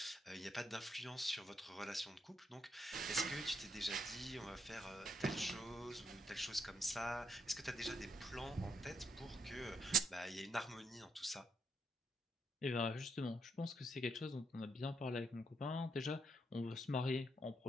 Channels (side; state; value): both; normal; correlation 0.78